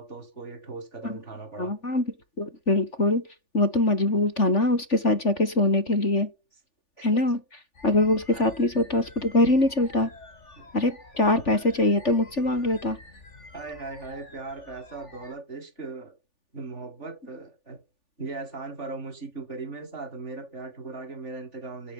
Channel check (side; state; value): right; late; 3.4 ms